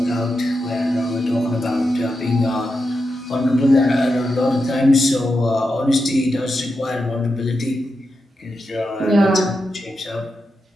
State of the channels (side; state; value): both; normal; correlation 0.88